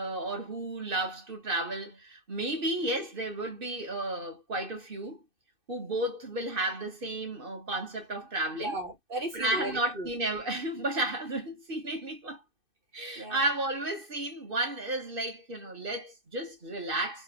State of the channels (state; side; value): late; left; 2.6 ms